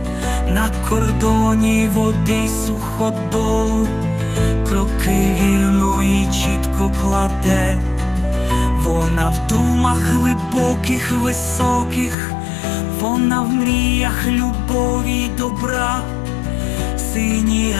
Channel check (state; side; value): drops out; right; at 12.2 s